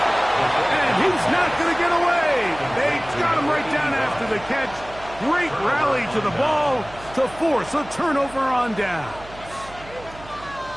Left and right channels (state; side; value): noise; right; hum, 19 dB below the sound